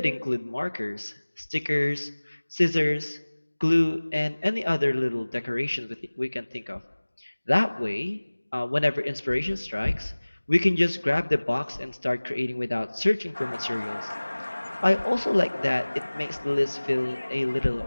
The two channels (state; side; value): inverted; both; correlation -1.00